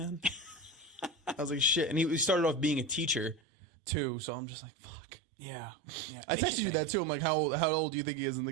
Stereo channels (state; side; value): drops out; left; at 3.4 s